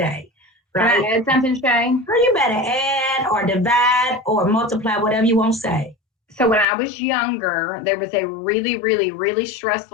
Right? Can I add something, Shay? Or you better add or divide or multiply, whatever you want to say. So when I was younger, there was a really, really, really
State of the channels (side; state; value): right; drops out; at 6.7 s